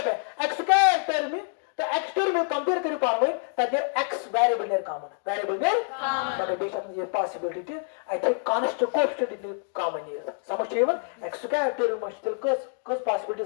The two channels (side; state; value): right; silent; 60 dB below the other